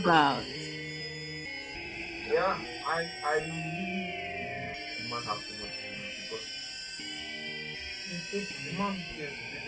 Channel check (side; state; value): both; identical; correlation 1.00